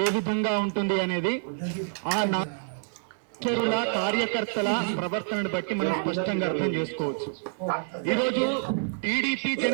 ఏ విధంగా ఉంటుంది అనేది ఆ నాయకుల కార్యకర్తల ప్రవర్తనను బట్టి మనం స్పష్టంగా అర్థం చేసుకోవచ్చు. ఈరోజు టీడీపీ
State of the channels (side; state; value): left; silent; digital silence